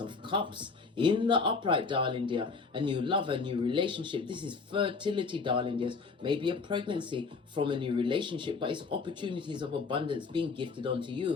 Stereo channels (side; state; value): right; quieter; 4.6 dB